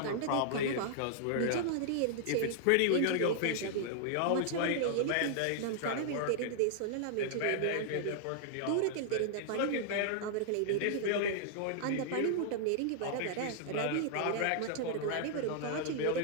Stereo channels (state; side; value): different; both; correlation -0.01